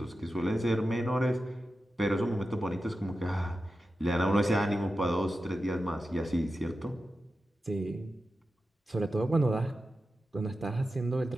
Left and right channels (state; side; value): normal; both; correlation 0.92